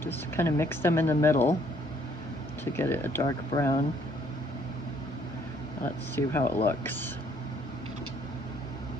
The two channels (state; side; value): normal; both; correlation 0.64